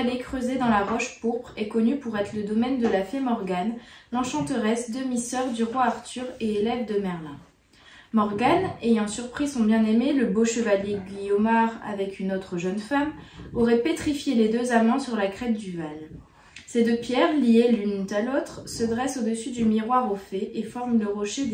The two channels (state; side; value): identical; both; correlation 1.00